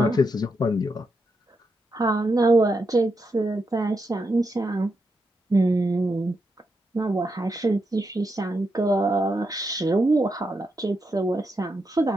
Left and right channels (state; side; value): normal; both; correlation 0.84